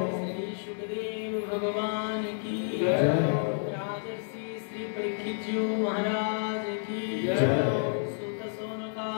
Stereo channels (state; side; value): silent; right; 58 dB below the other